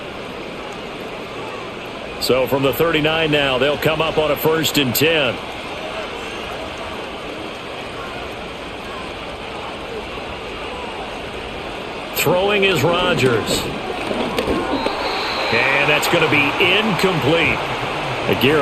So from the 39 now, they'll come up on a 1st and 10. Throwing is Rodgers. And that's going to be incomplete.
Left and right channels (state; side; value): identical; both; correlation 1.00